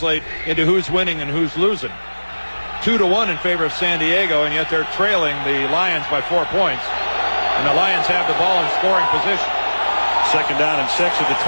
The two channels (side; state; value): both; inverted; correlation -1.00